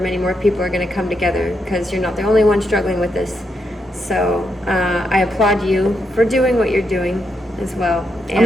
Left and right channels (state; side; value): normal; both; correlation 0.81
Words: more people are going to come together because you're not the only one struggling with this. So I applaud you for doing what you're doing as well.